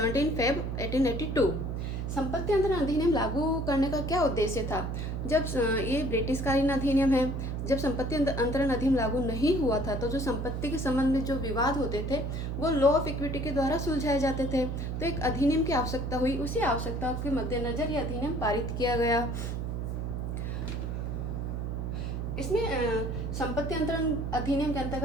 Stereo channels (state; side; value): noise; right; hum, 3 dB below the sound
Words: Feb 1882। संपत्ति अंतरण अधिनियम लागू करने का क्या उद्देश्य था? जब ये ब्रिटिशकालीन अधिनियम है, जब संपत्ति अंतरण अधिनियम लागू नहीं हुआ था तो जो संपत्ति के संबंध में जो विवाद होते थे वो लॉ ऑफ इक्विटी के द्वारा सुलझाए जाते थे। तो एक अधिनियम की आवश्यकता हुई, उसी आवश्यकता के मद्देनजर यह अधिनियम पारित किया गया। इसमें संपत्ति अंतरण अधिनियम के अंतर्गत